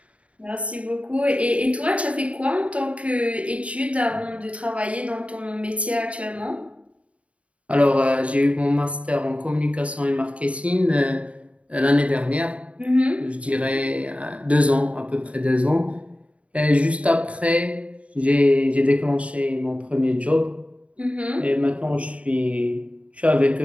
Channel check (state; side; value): late; left; 0.064 ms